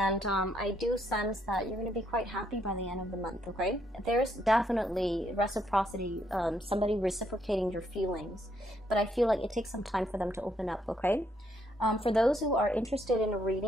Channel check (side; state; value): both; normal; correlation 0.73